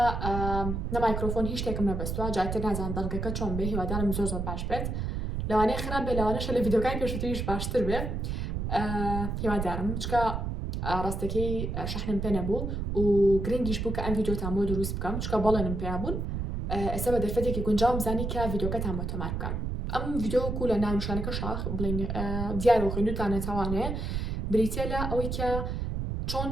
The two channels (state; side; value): noise; right; rumble, 3 dB below the sound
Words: نە مایکرۆفۆن هیچ شتێکم نەبەستووە، جاتر نازان دەڵگەکە چۆن بێ، هیوادارم زۆر باش بێت. لەوانەیە خراپ بێ، لەوانەیە لە ڤیدیۆکانی پێشووتریش باشتر بێ. هیوادارم چکە ڕاستەکەی شەحنم پێ نەبوو و گرنگیش بوو کە ئەم ڤیدیۆتان بۆ دروست بکەم، چکە بەڵێنم پێیا بوون. ئێستا بە دەرفەتێکی گونجاوم زانی کە ڤیدیۆکەتان بۆ تۆمار بکەم. ئەم ڤیدیۆ لە ناونیشانەکە شاخ بڵین دیار و خوێندوتانە تاوانەیە بریتە لە ئەوەی کە چۆن